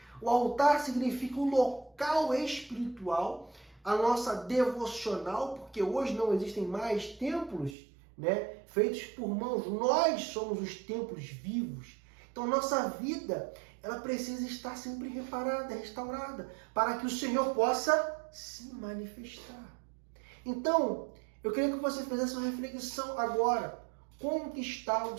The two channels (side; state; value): left; drops out; at 7.8 s